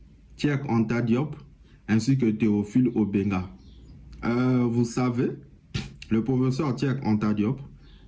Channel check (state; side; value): identical; both; correlation 1.00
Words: Cheikh Anta Diop ainsi que Théophile Obenga. Vous savez, le professeur Cheikh Anta Diop